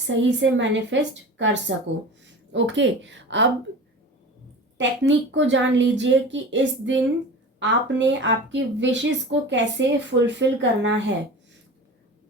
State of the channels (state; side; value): normal; both; correlation 0.35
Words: से मैनिफेस्ट कर सको। ओके, अब टेक्निक को जान लीजिए कि इस दिन आपने आपकी विशेस को कैसे फुलफिल करना है।